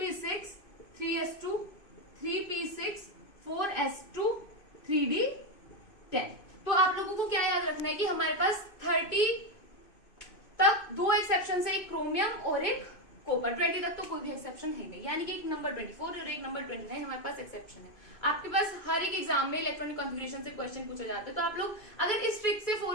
3s2, 3p6, 4s2, 3d10। तो आप लोगों को क्या याद रखना है कि हमारे पास 30 तक 2 एक्सेप्शन है, एक क्रोमियम और एक कॉपर। 20 तक तो कोई भी एक्सेप्शन है नहीं, यानी कि एक नंबर 24 और एक नंबर 29 हमारे पास एक्सेप्शन है। आपके पास हर एक एग्जाम में इलेक्ट्रॉनिक कॉन्फ़िगरेशन से क्वेश्चन पूछे जाते हैं, तो आप लोग अगर इस ट्रिक से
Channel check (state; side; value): late; right; 2.5 ms